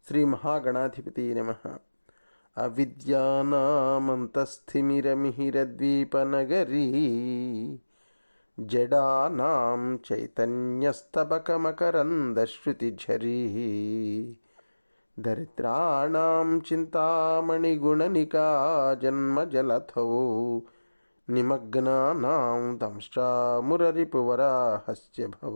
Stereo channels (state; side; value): inverted; both; correlation -1.00